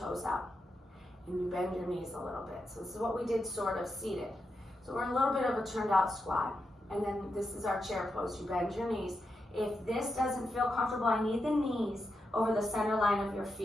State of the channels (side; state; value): both; normal; correlation 0.86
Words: out. And you bend your knees a little bit. So this is what we did sort of seated. So we're a little bit of a turned out squat. And then this is our chair pose. You bend your knees. If this doesn't feel comfortable, I need the knees over the center line of your